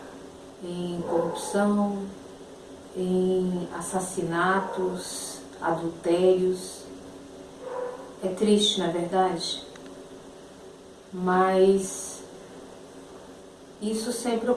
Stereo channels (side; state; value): both; identical; correlation 1.00